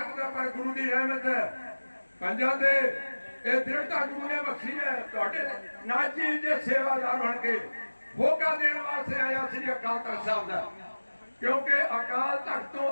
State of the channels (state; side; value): inverted; both; correlation -1.00